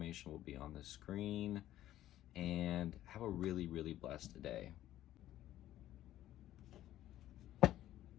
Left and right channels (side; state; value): right; quieter; 13.4 dB